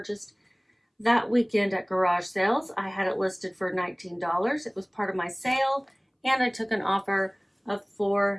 that weekend at garage sales. I had it listed for $19. It was part of my sale, and I took an offer of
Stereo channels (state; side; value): identical; both; correlation 1.00